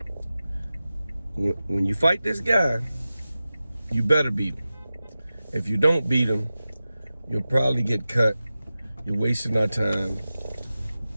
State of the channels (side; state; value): both; inverted; correlation -0.94